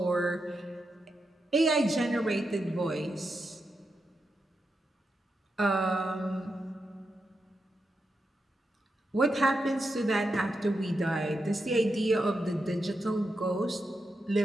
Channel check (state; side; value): normal; both; correlation 0.87